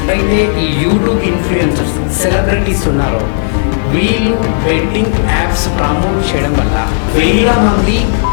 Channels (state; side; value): silent; right; 70 dB below the other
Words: అయితే ఈ యూట్యూబ్ ఇన్ఫ్లుయెన్సర్స్ సెలబ్రిటీస్ ఉన్నారు, వీళ్ళు బెట్టింగ్ యాప్స్ ప్రమోట్ చేయడం వల్ల వేల మంది,